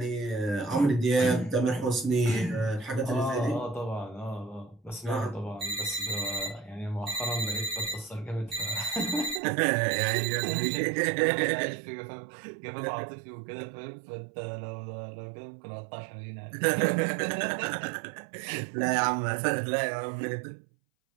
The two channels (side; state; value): left; drops out; at 9.4 s